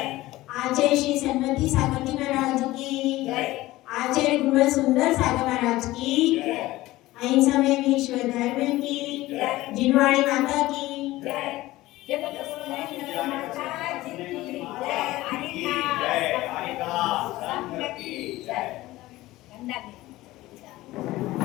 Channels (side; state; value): right; quieter; 17.7 dB